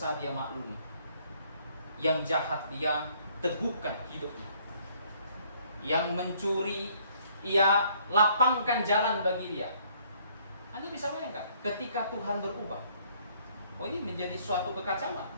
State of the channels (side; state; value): both; inverted; correlation -0.63